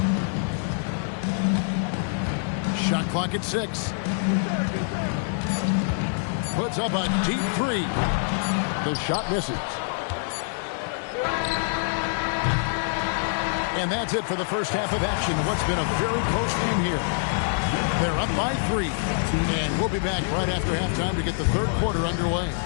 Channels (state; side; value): silent; right; 61 dB below the other